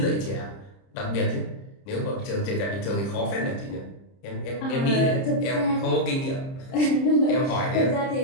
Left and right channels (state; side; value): late; right; 30 ms